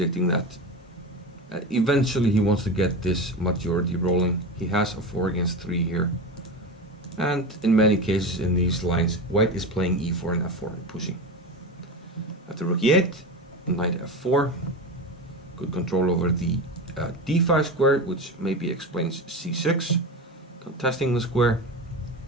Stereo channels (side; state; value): both; normal; correlation 0.24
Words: that eventually he wants to get this majority rolling. He has a 4 against 3 here. And in many cases in these lines, white is playing e4 and f4 and pushing. After rook e8, knight f4. Good control over the d5 square, which maybe explains c6. Contesting the square.